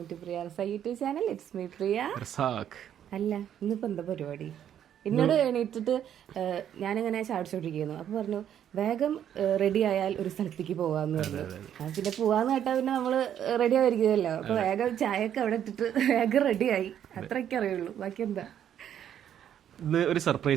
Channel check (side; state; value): left; quieter; 9.9 dB